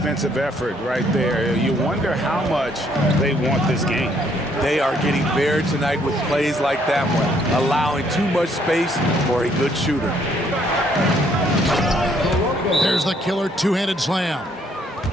effort right there, you wonder how much they want this game. They are getting buried tonight with plays like that one, allowing too much space for a good shooter. There's the killer two-handed slam.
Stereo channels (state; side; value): normal; both; correlation 0.67